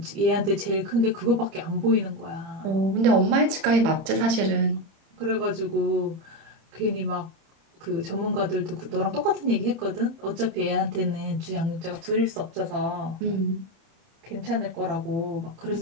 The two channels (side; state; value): left; late; 31 ms